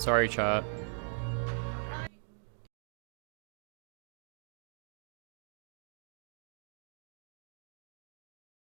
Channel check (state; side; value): silent; left; 51 dB below the other